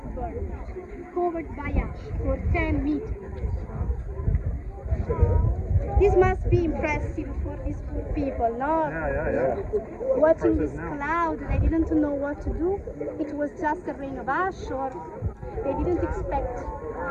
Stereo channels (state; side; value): identical; both; correlation 1.00